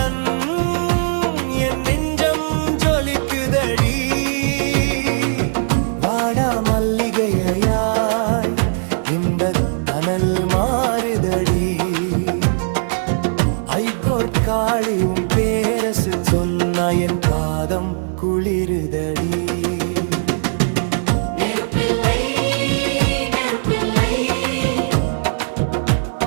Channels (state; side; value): silent; left; 64 dB below the other